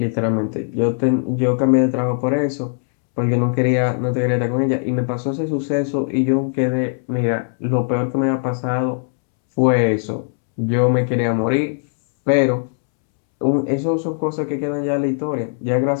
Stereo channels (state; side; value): silent; right; 66 dB below the other